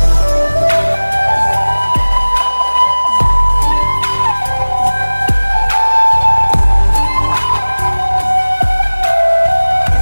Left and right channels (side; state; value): both; inverted; correlation -1.00